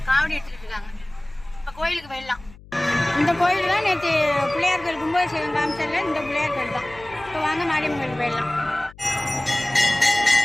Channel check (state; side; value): noise; left; hum, 21 dB below the sound